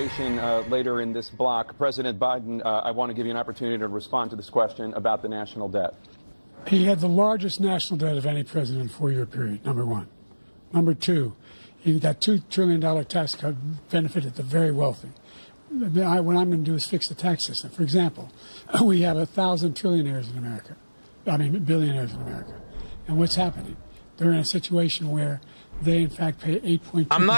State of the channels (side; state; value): both; inverted; correlation -1.00